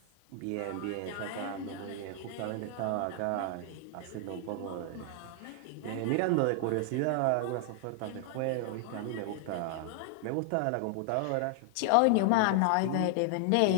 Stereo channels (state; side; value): different; both; correlation 0.00